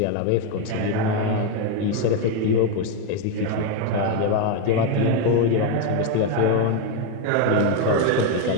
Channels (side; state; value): both; different; correlation 0.02